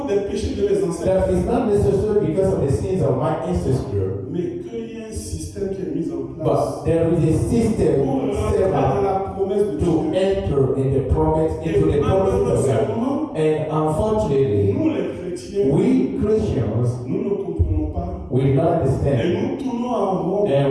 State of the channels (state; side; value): identical; both; correlation 1.00